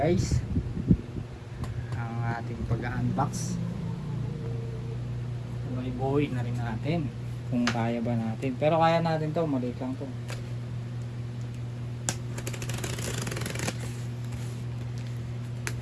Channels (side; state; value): both; identical; correlation 1.00